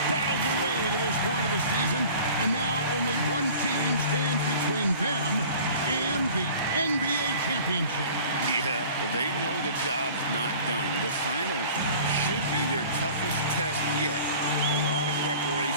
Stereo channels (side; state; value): both; inverted; correlation -0.44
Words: battled their way to this point of the season, and now only one team stands between them and the NBA championship. Yeah, they know the job's not done. The finals should be their toughest test yet. A lot of